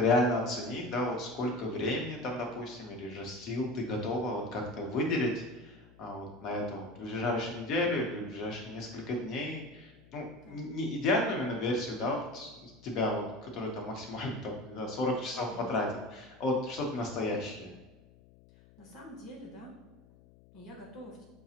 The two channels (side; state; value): left; noise; hum, 25 dB below the sound